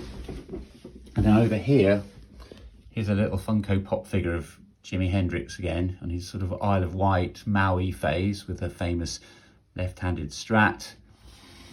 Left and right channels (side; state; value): both; identical; correlation 1.00